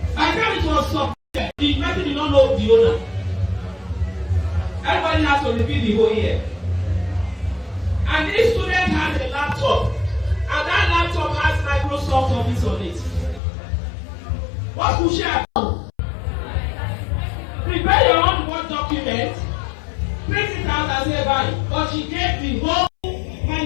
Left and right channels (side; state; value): right; drops out; at 13.4 s